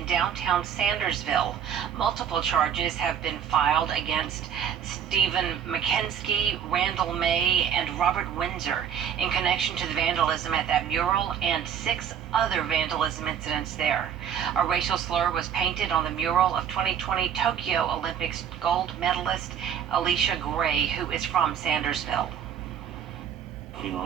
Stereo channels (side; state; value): left; quieter; 8.7 dB